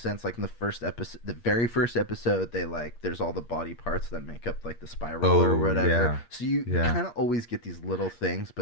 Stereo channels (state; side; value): late; right; 8.5 ms